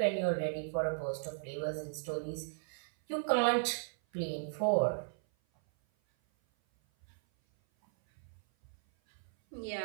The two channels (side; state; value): left; silent; 54 dB below the other